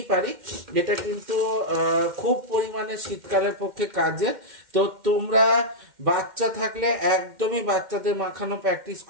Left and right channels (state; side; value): late; left; 2.1 ms